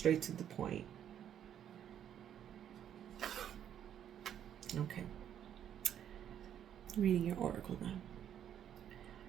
to the point. Okay. Reading your oracle now.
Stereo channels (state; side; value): quieter; left; 9.8 dB